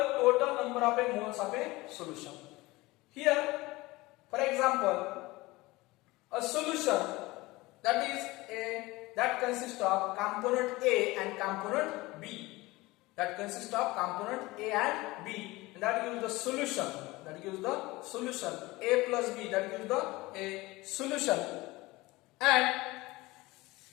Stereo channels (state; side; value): quieter; right; 20.8 dB